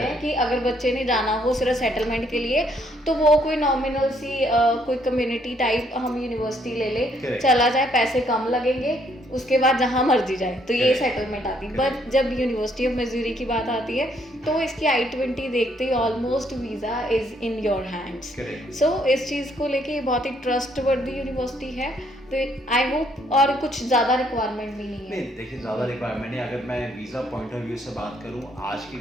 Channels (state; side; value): normal; both; correlation 0.69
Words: हैं कि अगर बच्चे ने जाना हो सिर्फ सेटलमेंट के लिए तो वो कोई नॉमिनल सी कोई कम्युनिटी टाइप हम यूनिवर्सिटी ले ले, चला जाए, पैसे कम लगेंगे, उसके बाद जहाँ मर्जी जाए, तो ये सेटलमेंट आती है। बट जब यूनिवर्सिटी ऑफ मिसूरी की बात आती है तो इसकी I-20 देखते ही almost visa is in your hands. So इस चीज़ को लेके ये बहुत ही ट्रस्टवर्दी यूनिवर्सिटी है, तो आई होप, और कुछ ज़्यादा रिक्वायरमेंट भी नहीं है। नहीं देखिए, ज़्यादा रिक्वायरमेंट नहीं। अगर मैं वीज़ा पॉइंट ऑफ व्यू से बात करूँ, आज की